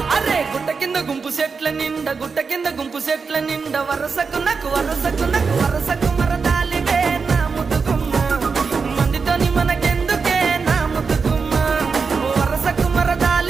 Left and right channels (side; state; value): left; quieter; 5.1 dB